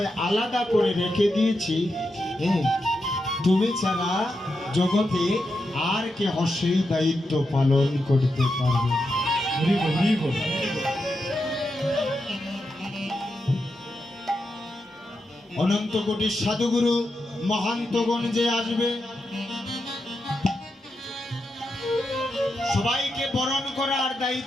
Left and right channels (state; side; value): normal; both; correlation 0.86